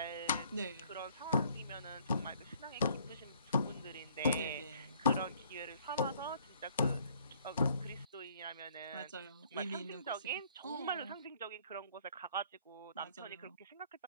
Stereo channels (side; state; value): both; inverted; correlation -0.61